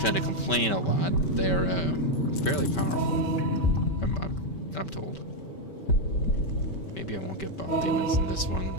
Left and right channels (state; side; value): late; right; 5.2 ms